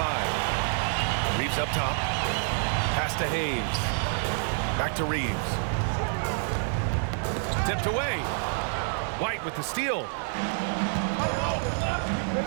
Reeves up top. Pass to Hayes. Back to Reeves. Tipped away. White with the steal.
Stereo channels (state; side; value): silent; left; 56 dB below the other